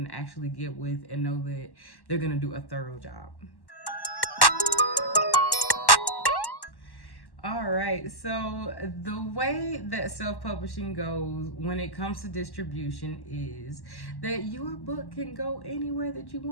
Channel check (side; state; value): right; late; 1.1 ms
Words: actually get with and know that they're gonna do a thorough job. All right, so the way that self-publishing goes when it comes to distribution is that your book can go anywhere that you